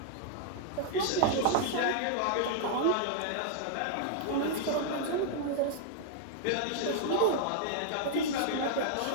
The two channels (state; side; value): different; both; correlation -0.01